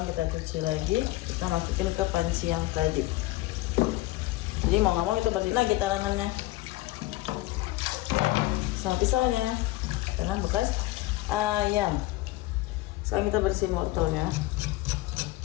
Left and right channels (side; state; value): right; quieter; 18.4 dB